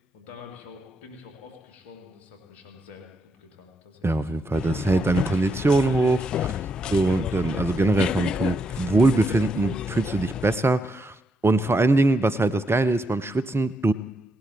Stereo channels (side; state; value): both; normal; correlation 0.80